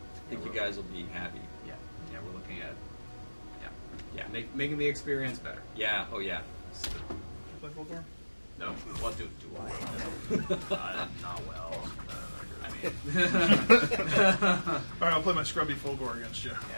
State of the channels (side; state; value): both; inverted; correlation -1.00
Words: think you guys will be happy. Yeah. Yeah, we're looking at. Yeah. Making the experience better. Yeah. Oh yeah. Play full door? No. What do I? Not well. I mean. All right, I'll play my scrubby full gore against you.